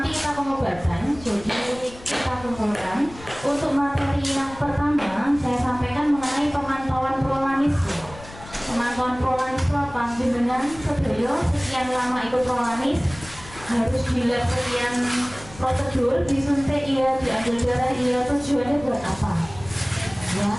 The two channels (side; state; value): left; noise; rumble, 18 dB below the sound